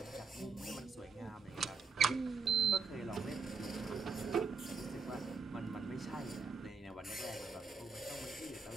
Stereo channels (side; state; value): left; quieter; 4.7 dB